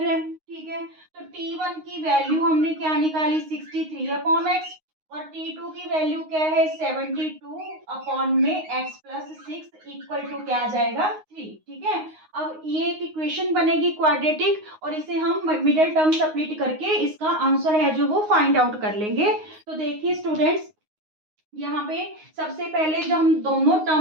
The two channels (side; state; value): left; late; 9.6 ms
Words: रहे हैं। ठीक है, तो t1 की वैल्यू हमने क्या निकाली, 63 अपॉन एक्स, और t2 की वैल्यू क्या है, 72 अपॉन में x प्लस 6 इक्वल टू क्या आ जाएगा, 3। ठीक है, अब ये एक इक्वेशन बनेगी क्वाड्रेटिक और इसे हम मिडिल टर्म सब्स्टिट्यूट करके इसका आंसर है जो वो फाइंड आउट कर लेंगे। तो देखिए स्टूडेंट्स, यहाँ पे सबसे पहले जो हम दोनों